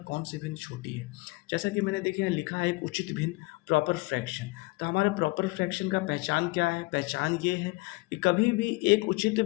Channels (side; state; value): right; quieter; 23.9 dB